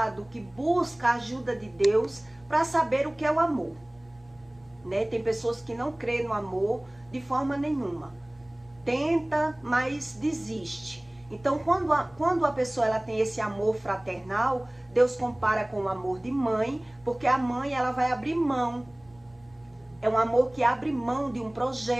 que busca a ajuda de Deus para saber o que é o amor. Né? Tem pessoas que não creem no amor de forma nenhuma. Tenta, mas desiste. Então, quando a pessoa ela tem esse amor fraternal, Deus compara com o amor de mãe, porque a mãe ela vai abrir mão. É um amor que abre mão de um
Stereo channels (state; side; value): noise; right; rumble, 30 dB below the sound